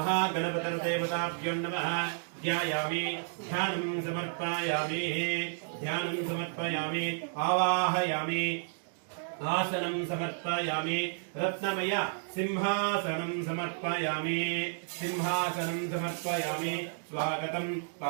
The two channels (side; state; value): left; silent; digital silence